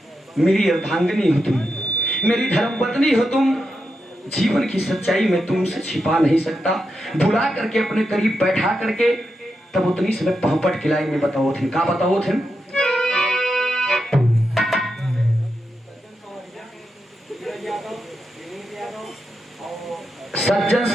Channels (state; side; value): normal; both; correlation 0.86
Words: मेरी अर्धांगिनी हो तुम, मेरी धर्मपत्नी हो तुम, जीवन की सच्चाई में तुमसे छिपा नहीं सकता। बुला करके अपने करीब बैठा करके तब उतनी समय पहपट खिलाई में बताओ थे, का बताओ थे? सज्जन